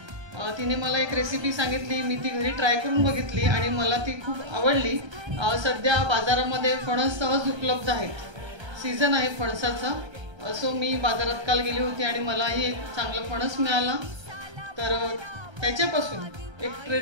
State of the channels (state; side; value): late; left; 1.3 ms